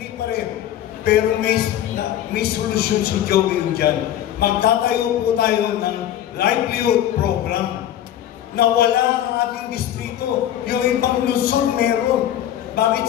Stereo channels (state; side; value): quieter; right; 11.6 dB